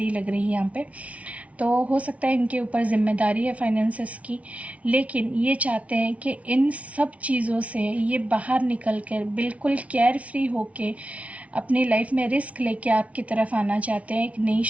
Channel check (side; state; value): left; late; 0.066 ms